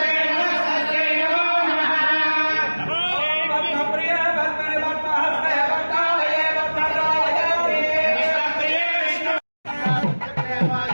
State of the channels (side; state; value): both; inverted; correlation -1.00